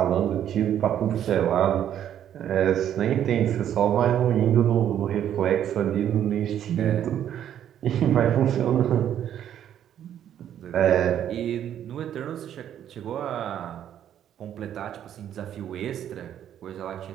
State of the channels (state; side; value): quieter; left; 10.3 dB